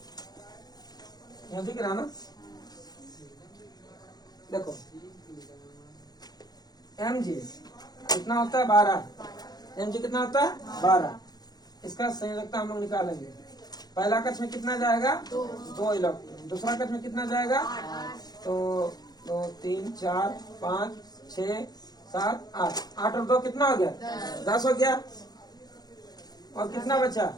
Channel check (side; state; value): right; late; 0.19 ms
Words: यहाँ दिख रहा ना, देखो mg कितना होता है? 12। mg कितना होता है? 12। इसका संयोजकता हम लोग निकालेंगे। पहला कक्ष में कितना जाएगा? 2 इलेक्ट्रॉन। दूसरा कक्ष में कितना जाएगा? तो 2 3 4 5 6 7 8। 8 और 2 कितना हो गया? 10 हो गया। और कितना बचा?